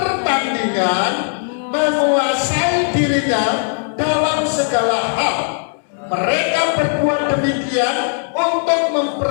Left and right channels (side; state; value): right; silent; 64 dB below the other